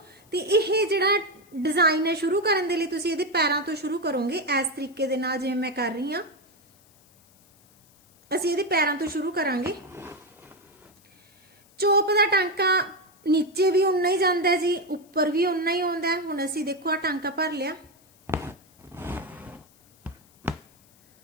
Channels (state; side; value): noise; left; hiss, 30 dB below the sound